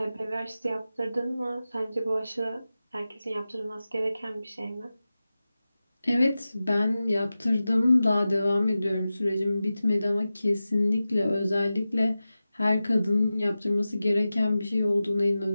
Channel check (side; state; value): both; inverted; correlation -0.94